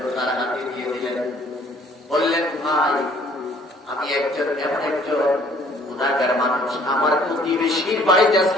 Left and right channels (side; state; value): both; normal; correlation 0.58